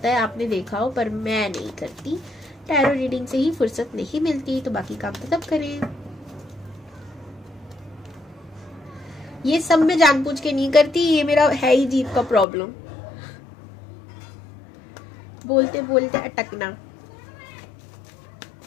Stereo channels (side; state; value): right; drops out; at 12.5 s